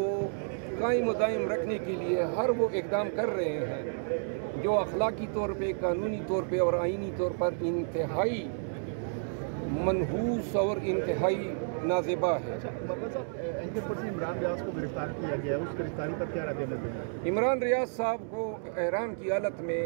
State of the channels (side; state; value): left; silent; digital silence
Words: قائم و دائم رکھنے کے لیے ہر وہ اقدام کر رہے ہیں جو اخلاقی طور پہ، قانونی طور پہ اور آئینی طور پر انتہائی منحوس اور انتہائی نازیبا ہے۔ عمران ریاض کو گرفتار کیا گیا ہے، اس گرفتاری پر کیا رد عمل ہے؟ عمران ریاض صاحب کو احرام کی حالت میں